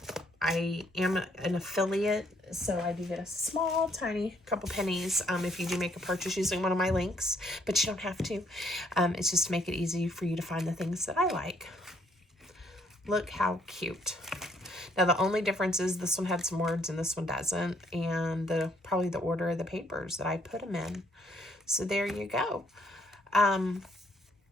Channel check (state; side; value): normal; both; correlation 0.68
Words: I am an affiliate, so I do get a small, tiny couple pennies if you do make a purchase using one of my links, but you don't have to. It's just to make it easy for you to find the things that I like. Look how cute. Now, the only difference is this one had some words and this one doesn't, and probably the order of the papers that I put them in. So there you go. I